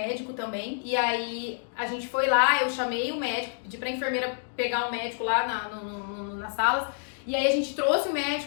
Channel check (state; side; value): silent; right; digital silence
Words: também, e aí a gente foi lá, eu chamei o médico, pedi pra enfermeira pegar o médico lá nas salas, e aí a gente trouxe o